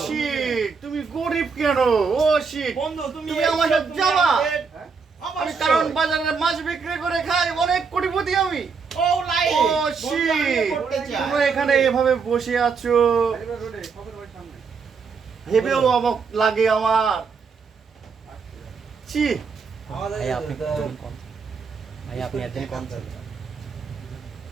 শিট, তুমি গরিব কেন? ও শিট, বন্ধু তুমি তুমি আমার সাথে যাবা? আমি অবশ্যই। কারণ বাজারে মাছ বিক্রি করে খাই, অনেক কোটিপতি আমি। ও লাই ও শিট, করতে চাই। তোমরা এখানে এভাবে বসে আছো, ভেবেও অবাক লাগে আমার। ছি, ভাই আপনি কম ভাই আপনি একদিন কম ছিল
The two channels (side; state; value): left; quieter; 5.3 dB